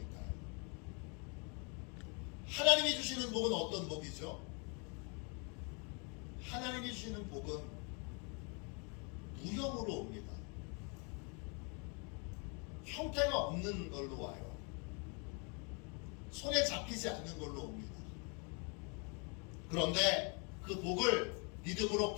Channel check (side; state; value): right; quieter; 35.0 dB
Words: 하나님이 주시는 복은 어떤 복이죠? 하나님이 주시는 복은 무형으로 옵니다. 형태가 없는 걸로 와요. 손에 잡히지 않는 걸로 옵니다. 그런데 그 복을 믿음으로